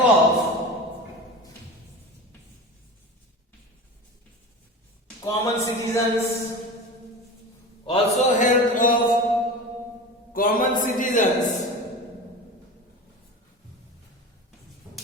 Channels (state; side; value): normal; both; correlation 0.31